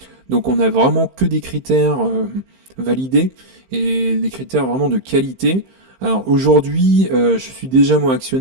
Donc on a vraiment que des critères validés, et des critères vraiment de qualité. Alors aujourd'hui, je suis déjà moi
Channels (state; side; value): late; left; 15 ms